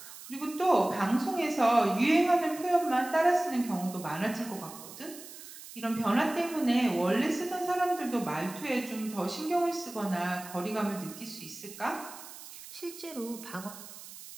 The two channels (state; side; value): noise; right; hiss, 15 dB below the sound